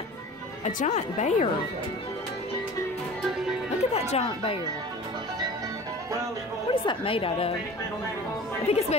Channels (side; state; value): both; normal; correlation 0.40